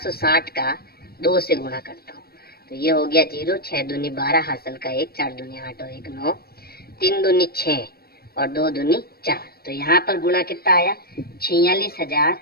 का 2 से गुणा करता हूँ, तो ये हो गया 0, 6 दूनी 12, हासिल का 1, 4 दूनी 8 और 1 9, 3 दूनी 6 और 2 दूनी 4। तो यहाँ पर गुणा कितना आया,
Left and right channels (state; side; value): late; right; 0.45 ms